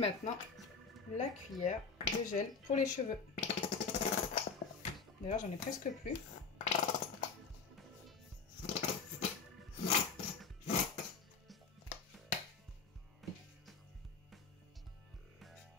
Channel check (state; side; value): quieter; right; 5.2 dB